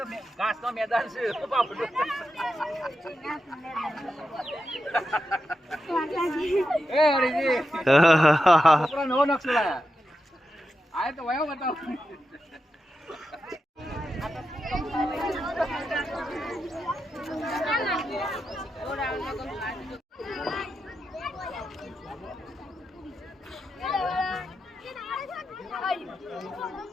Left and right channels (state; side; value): normal; both; correlation 0.88